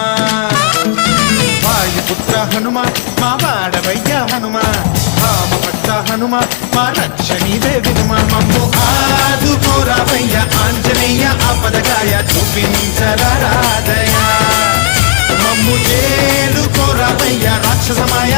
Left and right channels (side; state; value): right; silent; digital silence